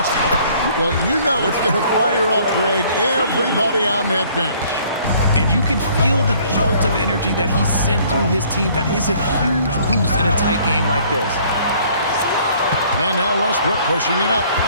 Well, you know it's going to fire up, Greg, everybody on that bench. And you can feel the jolt of energy that he sent through his team. That is a huge boost in a tight game like this. And now Westbrook pushing it up.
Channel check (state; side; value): inverted; both; correlation -0.58